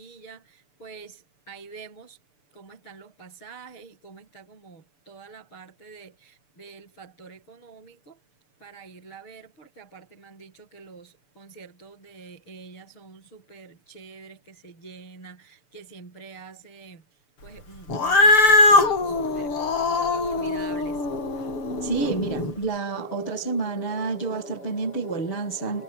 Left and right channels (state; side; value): late; right; 6.9 ms